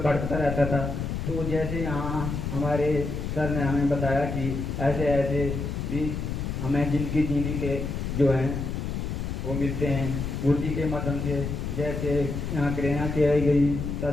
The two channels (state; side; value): noise; left; rumble, 3 dB below the sound